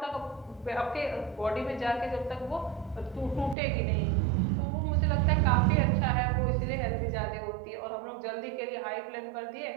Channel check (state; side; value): drops out; left; at 3.6 s